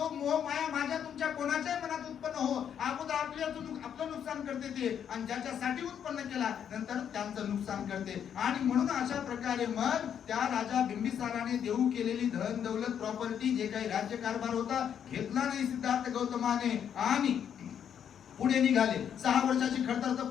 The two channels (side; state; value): right; quieter; 8.6 dB